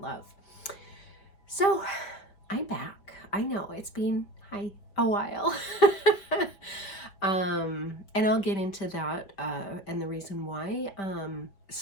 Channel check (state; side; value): late; right; 5.3 ms